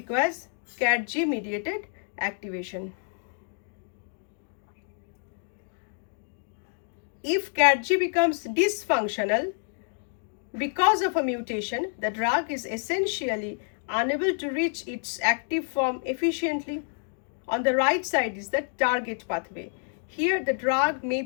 CAT-G mediated activation. If CAT-G becomes dysfunctional because of a mutation, the drug is essentially unable to reach its active form efficiently. On the right side is the target pathway. Here the drug may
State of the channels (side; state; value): right; silent; 59 dB below the other